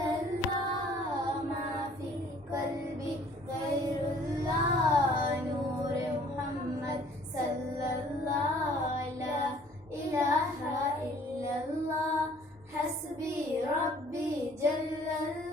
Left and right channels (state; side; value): normal; both; correlation 0.56